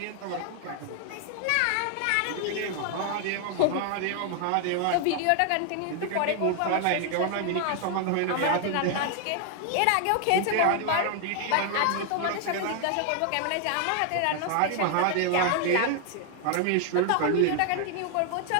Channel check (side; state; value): both; different; correlation 0.00